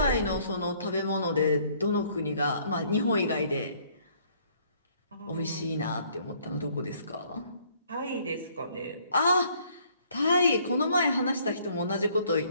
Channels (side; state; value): both; inverted; correlation -0.62